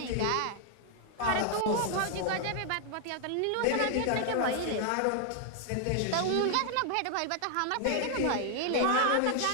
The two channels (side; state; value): both; different; correlation 0.00